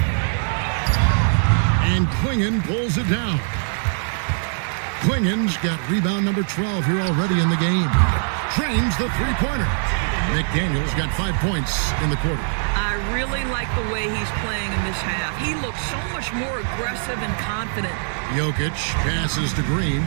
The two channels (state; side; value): silent; left; digital silence